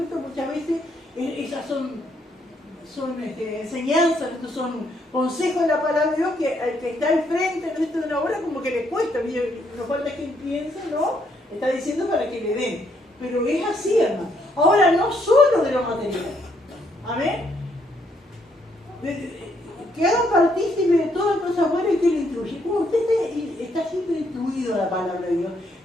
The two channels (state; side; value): normal; both; correlation 0.72